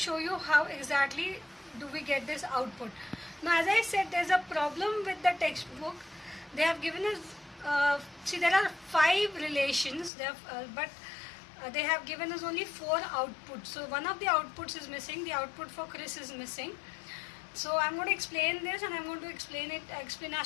you how exactly do we get this output. Now, as I said, there's a problem with the textbook. They have given us, see, there are 5 relations, but they have given us only 4 outputs. So one of the outputs is missing. The output for Chris is missing. So I'm going to explain this and I'm going to explain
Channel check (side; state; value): right; drops out; at 10.1 s